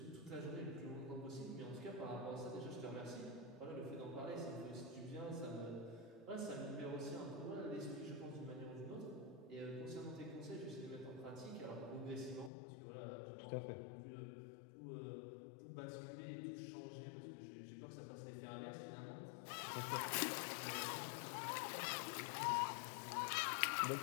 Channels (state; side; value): drops out; right; at 12.5 s